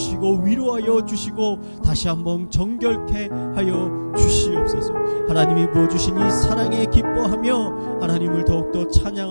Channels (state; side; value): inverted; both; correlation -1.00